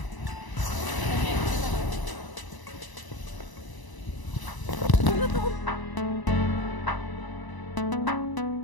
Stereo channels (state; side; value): late; right; 1.0 ms